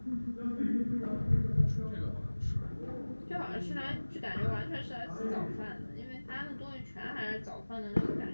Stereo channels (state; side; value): inverted; both; correlation -1.00